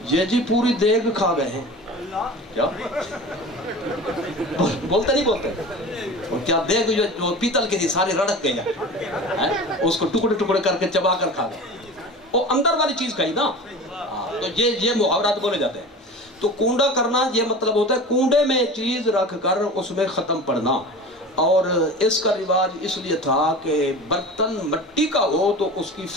یہ جی پوری دیگ کھا گئے ہیں کیا بولتے نہیں بولتے اور کیا دیگ جو پیتل کے تھی سارے رڑک گئے ہیں اس کو ٹکڑے ٹکڑے کر کے چبا کر کھا گئے وہ اندر والی چیز کھائی نا تو یہ محاورات بولے جاتے ہیں تو کونڈا کرنا یہ مطلب ہوتا ہے کونڈے میں چیز رکھ کر اس میں ختم پڑنا اور اس کا رواج اس لیے تھا کہ برتن مٹی کا ہو تو اس کی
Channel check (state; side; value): normal; both; correlation 0.35